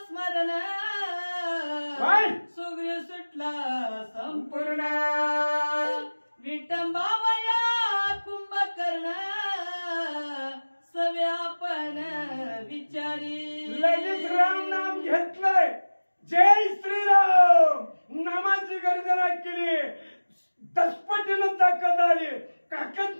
स्मरण सुग्रीव सुटला संपूर्ण. विटंबावया कुंभकर्ण सवे आपण विचारी. लगेच राम नाम घेतलंय. जय श्रीराम नामाची गर्जना केली. दसपटीनं ताकद आली.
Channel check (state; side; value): inverted; both; correlation -1.00